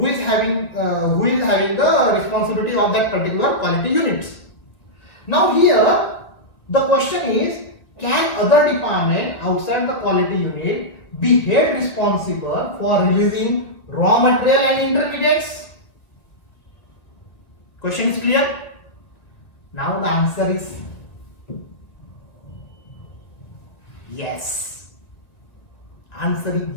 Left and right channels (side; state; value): right; late; 2.1 ms